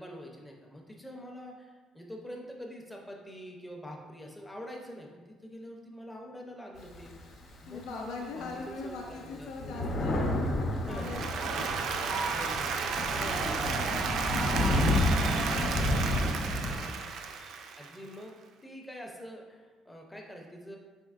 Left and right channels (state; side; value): normal; both; correlation 0.65